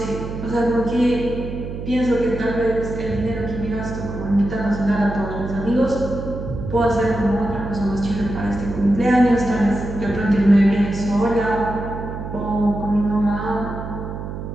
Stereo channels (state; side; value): noise; right; hum, 7 dB below the sound